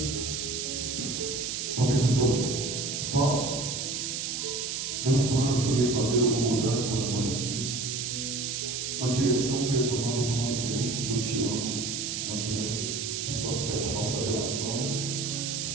talvez o que eu faço, meus planos que eu ia fazer, eu vou mudar por amor a Ti. Uma direção que eu ia tomar, vou tomar diferente porque eu Te amo. Não quero que isso afete a nossa relação. Que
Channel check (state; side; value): noise; right; hiss, 3 dB below the sound